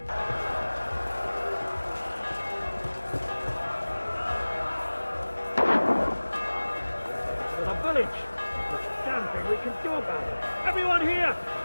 The village! There's a damn thing we can do about it! Everyone here!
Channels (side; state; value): both; inverted; correlation -1.00